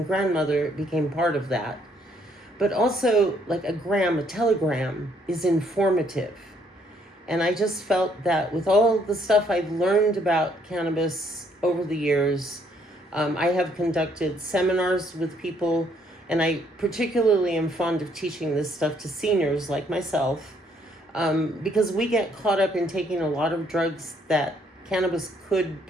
grandmother, became part of that. But also, like a telegram is informative. And I just felt that with all the stuff I've learned about cannabis over the years, I have conducted seminars with people, and I particularly am fond of teaching this stuff to seniors like myself, because we get caught up in taking a lot of drugs that cannabis could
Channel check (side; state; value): both; normal; correlation 0.68